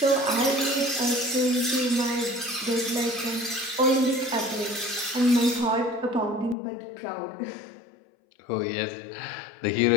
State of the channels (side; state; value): right; drops out; at 6.6 s